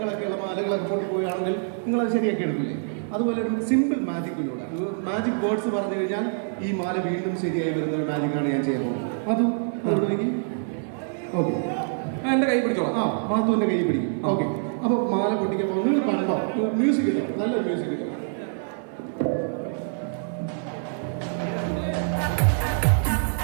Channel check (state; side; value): silent; left; 61 dB below the other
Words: മാലകളൊക്കെ കൊണ്ട് പോവുകയാണെങ്കിൽ നിങ്ങളത് ശരിയാക്കി എടുക്കില്ലേ? അതുപോലെ ഒരു സിമ്പിൾ മാജിക്കിലൂടെ മാജിക് വേർഡ്സ് പറഞ്ഞു കഴിഞ്ഞാൽ ഈ മാല വീണ്ടും ശരിയായി വരുന്ന ഒരു മാജിക്കാണ് ഞാൻ ചെയ്യാൻ പോകുന്നത്. അതും ഓക്കെ, എന്റെ കൈ പിടിച്ചോ. മാത്തുവിന്റെ കൈ പിടിക്കും. ഓക്കെ, അപ്പൊ മാല പൊട്ടിക്കാൻ നിങ്ങൾ കണ്ടോ? മ്യൂസിക് ഇട്ടോ, നല്ല മ്യൂസിക് ഇട്ടോ.